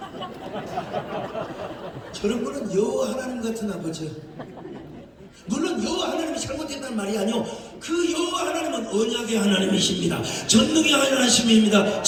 저런 거는 여호와 하나님 같은 아버지야. 물론 여호와 하나님이 잘못했다는 말이 아니요. 그 여호와 하나님은 언약의 하나님이십니다. 전능의 하나님이십니다.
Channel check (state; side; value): identical; both; correlation 1.00